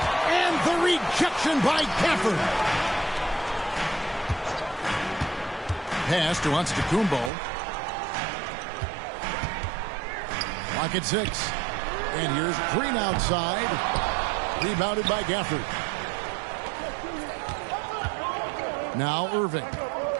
And the rejection by Gafford. Pass to Antetokounmpo. Clock at 6. And here's Green outside. Rebounded by Gafford. Now Irving.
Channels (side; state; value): left; drops out; at 7.3 s